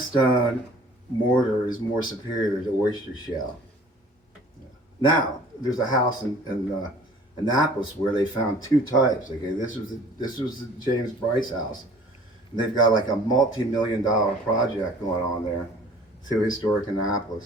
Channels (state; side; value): normal; both; correlation 0.50